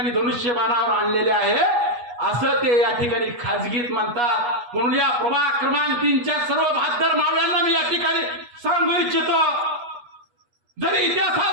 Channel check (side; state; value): left; late; 8.3 ms